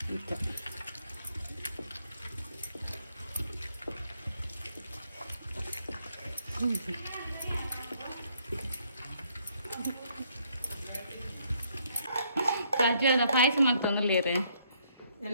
ಖರ್ಜೂರದ ಪಾಯಸ ಮಾಡ್ತಂದಿಲ್ಲೇರಿ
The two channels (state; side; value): inverted; both; correlation -0.69